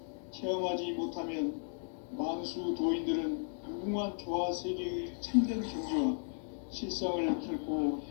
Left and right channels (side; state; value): right; silent; digital silence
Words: 체험하지 못하면 만수 도인들은 무궁한 조화 세계의 참된 경지와 실상을 결코